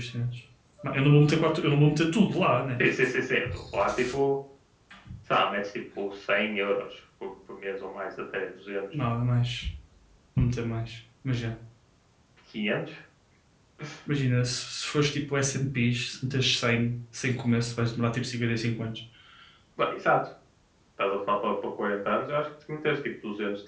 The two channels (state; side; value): identical; both; correlation 1.00